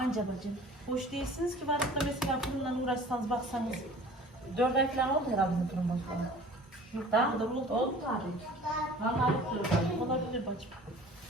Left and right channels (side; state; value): both; normal; correlation 0.46